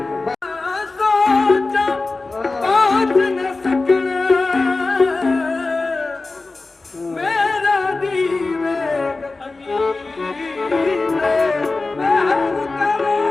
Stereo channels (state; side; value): quieter; right; 3.5 dB